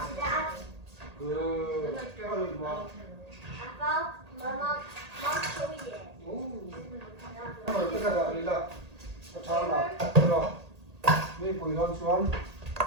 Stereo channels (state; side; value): late; left; 1.8 ms